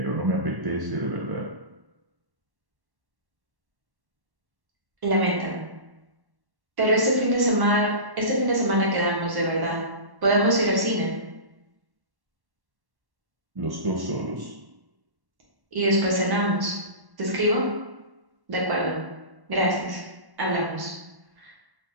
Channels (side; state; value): left; late; 1.1 ms